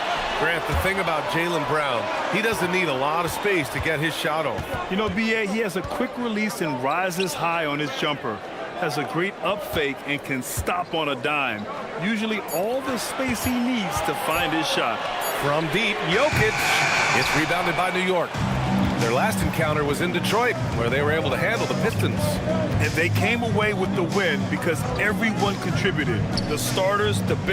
Grant, the thing about Jaylen Brown, he doesn't need a lot of space to get his shot off. You know, B.A., he has a quick release and rises high on his jumper. Has a great up fake and can stop on a dime. Usually all the space he needs to find his shot. From deep, Jokic. It's rebounded by New York. Their last encounter was in Detroit, where they were able to handle the Pistons. And they came away with the win because everyone contributed. The starters, the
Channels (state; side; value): identical; both; correlation 1.00